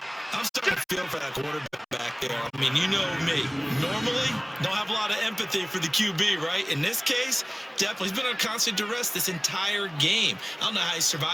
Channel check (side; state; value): both; identical; correlation 1.00